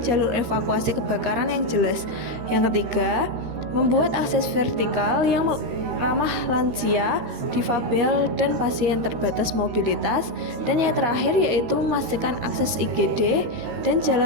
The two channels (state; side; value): late; left; 13 ms